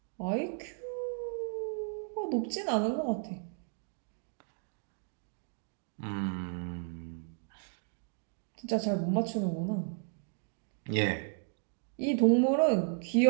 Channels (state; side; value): silent; left; 55 dB below the other